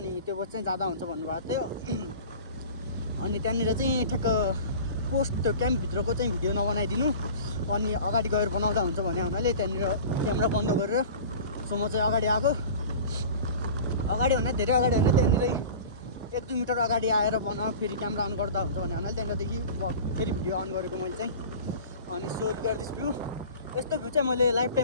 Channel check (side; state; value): both; inverted; correlation -0.39